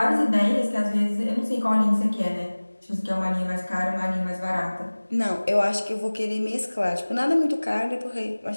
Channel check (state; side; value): inverted; both; correlation -1.00